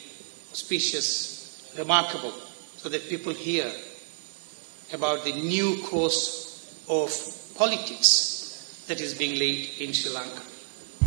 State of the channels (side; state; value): left; silent; digital silence